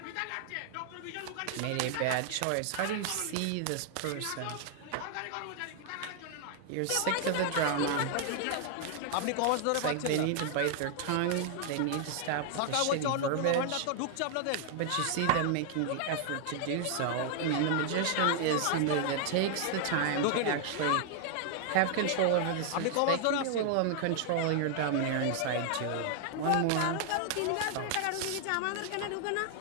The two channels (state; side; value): different; both; correlation 0.00